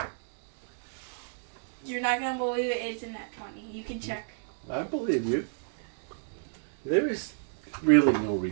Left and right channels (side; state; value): left; silent; digital silence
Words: You're not gonna believe it. It's in that 20. You can check. I believe you. There is really no